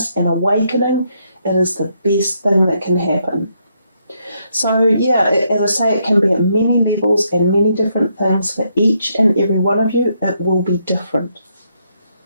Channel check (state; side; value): inverted; both; correlation -0.76